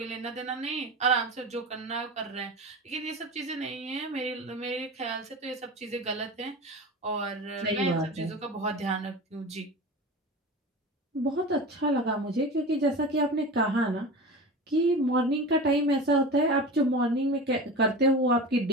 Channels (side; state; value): both; normal; correlation 0.31